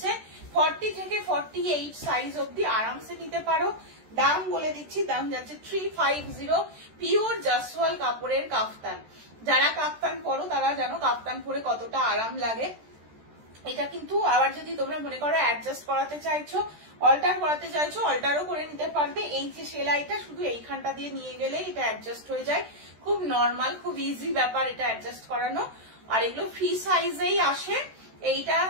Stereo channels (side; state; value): left; late; 13 ms